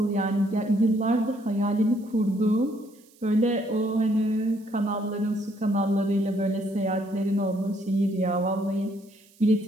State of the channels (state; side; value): noise; right; hiss, 29 dB below the sound